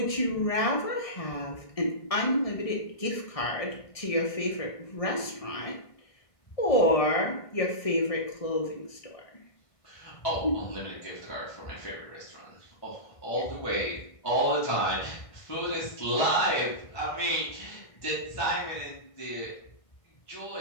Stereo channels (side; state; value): right; late; 1.6 ms